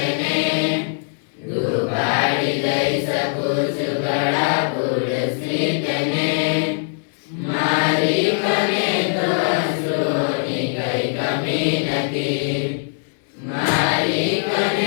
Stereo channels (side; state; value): right; silent; digital silence